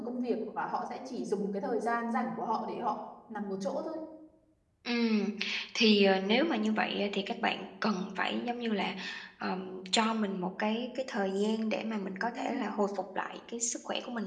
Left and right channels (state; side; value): identical; both; correlation 1.00